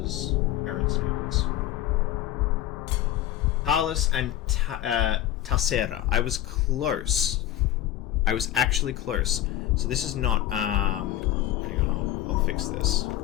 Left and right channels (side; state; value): right; quieter; 13.0 dB